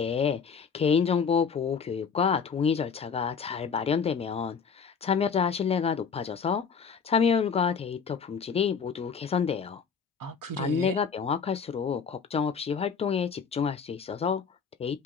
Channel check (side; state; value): right; quieter; 6.1 dB